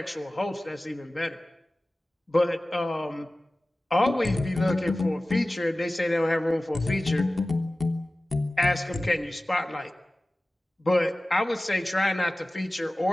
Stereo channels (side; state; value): both; normal; correlation 0.97